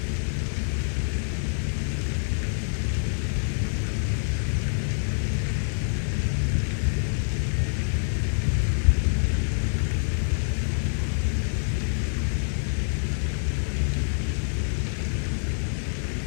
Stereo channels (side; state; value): right; silent; 61 dB below the other